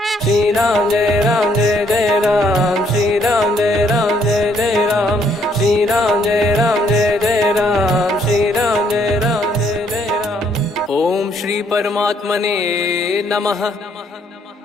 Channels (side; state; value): both; normal; correlation 0.68